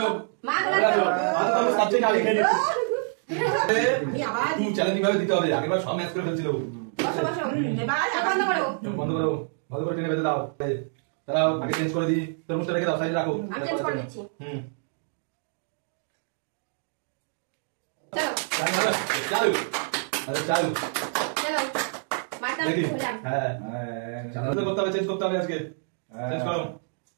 মা চলে চলে আসো আসো। আজ তো আমি সাবজেক্ট আগে খেয়ে নিচ্ছি আমি আবার তুই চ্যালেঞ্জ কিভাবে দিতে হবে আগেরবার সব ম্যাচ করে ফেলছিল বসো বসো। এবার চোখ বন্ধ করো। চোখ বন্ধ করো ভালো করে টেনে বেঁধে দাও দাঁড়াও আগে চেঞ্জ করে দিই তরমুজটা রেখে দাও সাইডে রাখো আমি চেঞ্জ করে দিচ্ছি। চলো চালু আরে চালু চলো মাথা দেখি খুললাম। হ্যাঁ চালু করতে হবে চেঞ্জ করতে হবে আজকে চেঞ্জ করো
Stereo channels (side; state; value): left; silent; 60 dB below the other